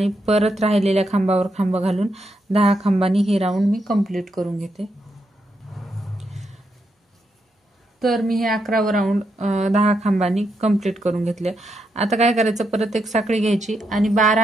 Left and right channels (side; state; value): both; normal; correlation 0.81